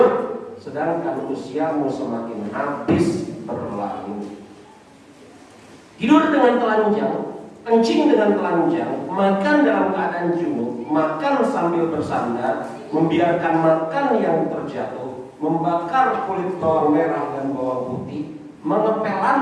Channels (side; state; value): both; identical; correlation 1.00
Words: sedangkan usiamu semakin habis berlalu. Tidur dengan telanjang, kencing dengan telanjang, makan dalam keadaan junub, makan sambil bersandar, membiarkan makan yang terjatuh, membakar kulit bawang merah dan bawang putih, mengepel